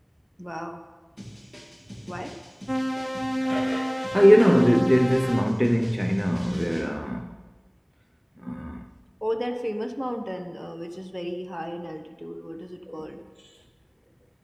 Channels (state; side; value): identical; both; correlation 1.00